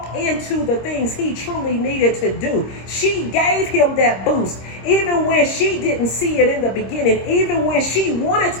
into the things he truly needed to do. She gave him that boost, even when she didn't see it in the beginning, even when she wanted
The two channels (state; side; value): late; right; 26 ms